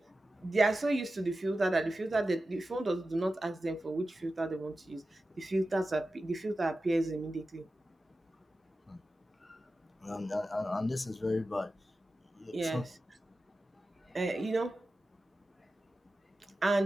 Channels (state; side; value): normal; both; correlation 0.93